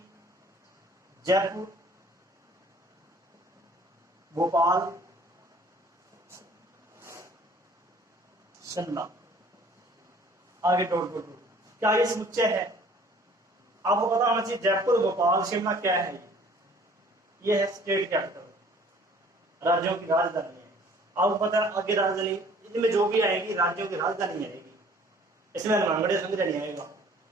जयपुर, भोपाल, शिमला, आगे डॉट डॉट डॉट। क्या ये समुच्चय है? आपको पता होना चाहिए जयपुर, भोपाल, शिमला क्या है? ये है स्टेट कैपिटल, राज्यों की राजधानी है। आपको पता है आगे राजधानी, इनमें जो भी आएगी राज्यों की राजधानी आएगी। इसमें हनुमानगढ़ संग्रह नहीं आएगा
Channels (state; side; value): normal; both; correlation 0.53